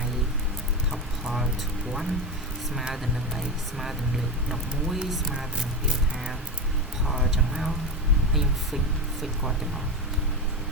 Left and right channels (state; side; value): normal; both; correlation 0.19